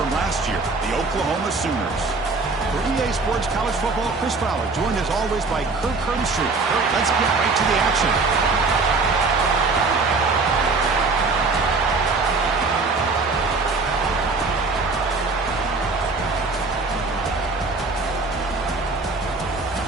last year, the Oklahoma Sooners. For EA Sports College Football, Chris Fowler, joined as always by Kirk Herbstreit. Kirk, let's get right to the action.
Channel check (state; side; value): quieter; left; 3.9 dB